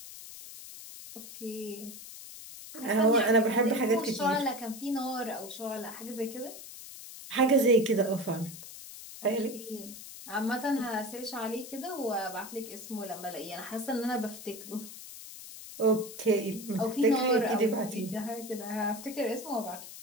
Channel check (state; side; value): noise; left; hiss, 13 dB below the sound